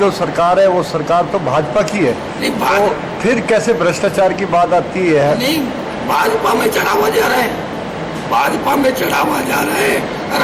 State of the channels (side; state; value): both; identical; correlation 1.00